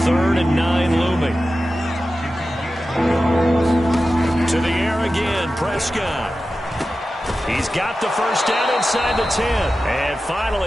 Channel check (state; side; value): normal; both; correlation 0.93